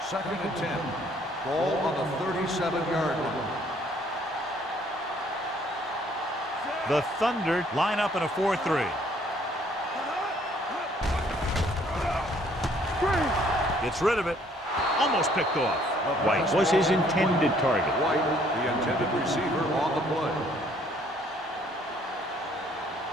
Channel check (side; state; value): both; normal; correlation 0.62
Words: Second and 10. Ball on the 37-yard line. The Thunder line up in a 4-3. Gets rid of it. Almost picked off. White was his intended target. White, the intended receiver on the play.